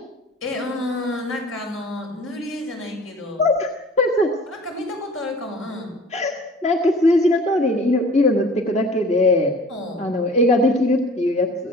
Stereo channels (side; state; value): both; normal; correlation 0.46